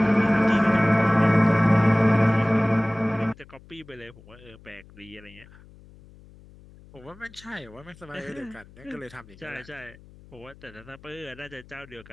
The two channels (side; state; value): left; noise; hum, 23 dB below the sound